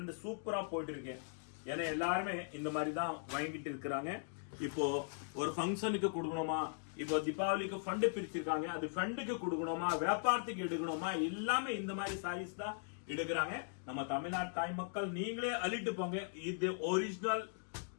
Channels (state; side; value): silent; right; digital silence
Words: சூப்பரா போயிட்டு இருக்கு. ஏன்னா எல்லாருமே இந்த மாதிரி தான் வாங்கிட்டு இருக்கிறாங்க. இப்போ ஒரு ஃபங்க்ஷனுக்கு கொடுக்கணுமா, இப்போ தீபாவளிக்கு ஃபண்ட் பிரிச்சிருக்காங்க, அது ஃபண்டுக்கு கொடுக்கணுமா, வியாபாரத்துக்கு எடுக்கணுமா, எல்லாமே இந்த மாதிரி சாரீஸ் தான் எடுக்கிறாங்க. நம்ம தமிழ்நாடு தாய் மக்கள் நீங்களே அள்ளிட்டு போங்க. இது ஒரிஜினல்